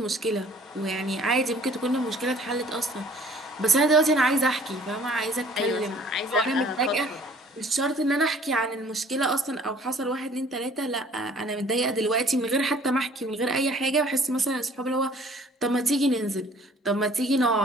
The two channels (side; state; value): both; normal; correlation 0.54